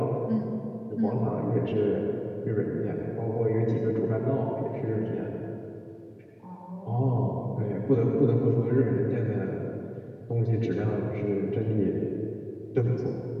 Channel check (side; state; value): both; identical; correlation 1.00